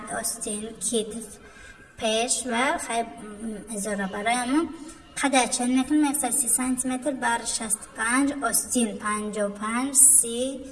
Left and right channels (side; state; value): both; identical; correlation 1.00